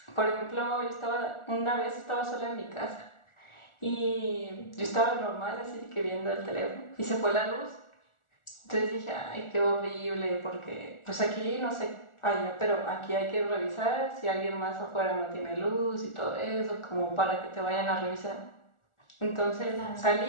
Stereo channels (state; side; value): late; right; 1.4 ms